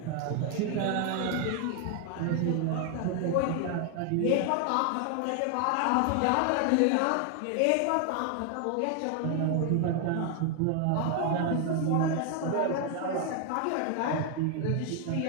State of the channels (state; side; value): different; both; correlation 0.00